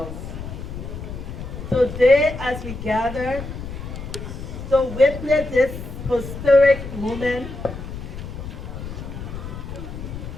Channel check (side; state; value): left; noise; rumble, 9 dB below the sound